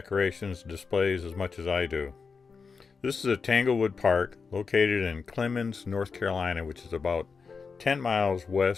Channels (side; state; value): right; quieter; 5.2 dB